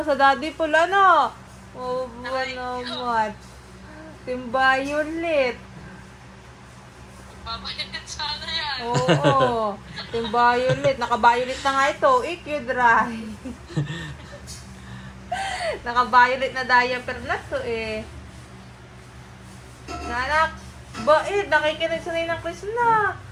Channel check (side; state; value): both; identical; correlation 1.00